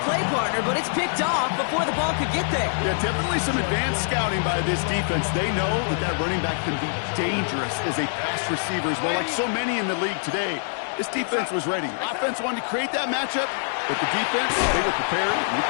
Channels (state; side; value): silent; right; digital silence